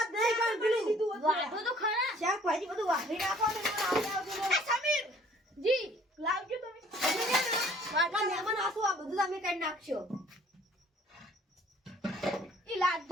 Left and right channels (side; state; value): both; normal; correlation 0.56